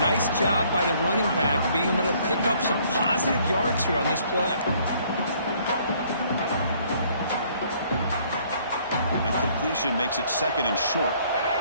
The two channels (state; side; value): inverted; both; correlation -0.62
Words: nice job by the running back being able to pick up some positive yards here on this play. And completion makes it 2nd and short.